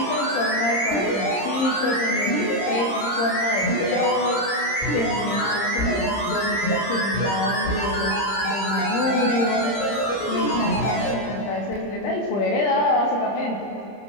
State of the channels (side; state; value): right; late; 30 ms